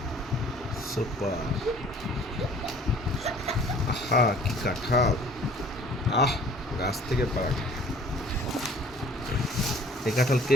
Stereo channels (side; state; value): both; normal; correlation 0.53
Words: সুপার। আহা কি কাঁঠাল! আহ, গাছ থেকে পাড়া। এই কাঁঠাল কে